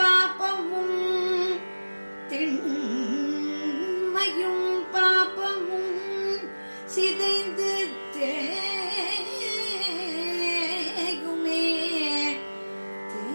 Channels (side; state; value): both; inverted; correlation -1.00